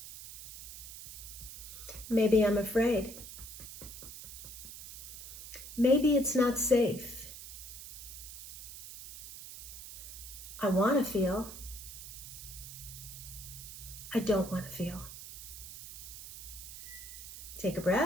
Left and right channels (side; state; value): right; noise; hiss, 11 dB below the sound